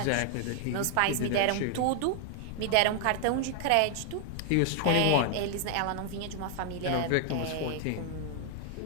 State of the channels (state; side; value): different; both; correlation 0.00